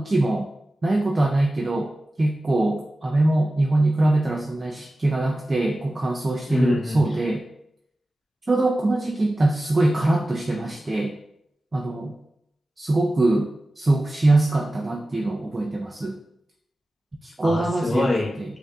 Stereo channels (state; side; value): normal; both; correlation 0.95